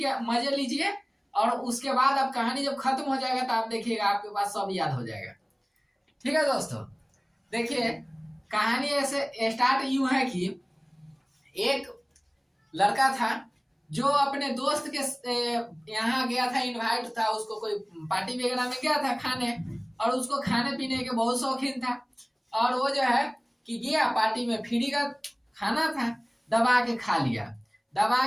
मजे लीजिए और उसके बाद अब कहानी जब खत्म हो जाएगा तो आप देखिएगा आपके पास सब याद हो जाएगा। ठीक है दोस्तों, देखिए कहानी ऐसे स्टार्ट यूं है कि एक लड़का था जो अपने दोस्त के यहाँ गया था, इनवाइट था, उसको कोई पार्टी वगैरह में गया था खाने, और उसको खाने पीने के बहुत शौकीन था। और वो जो है कि गया पार्टी में, फ्री का खाना था, दबा के खा लिया।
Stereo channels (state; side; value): identical; both; correlation 1.00